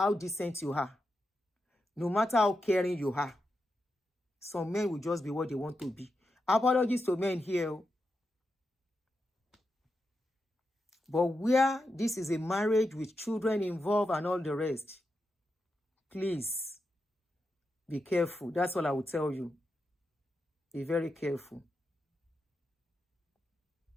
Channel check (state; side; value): normal; both; correlation 0.87